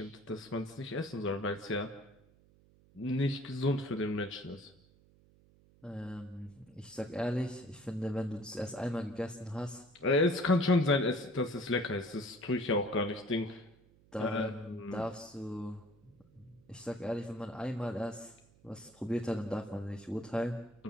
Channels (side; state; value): right; noise; hum, 28 dB below the sound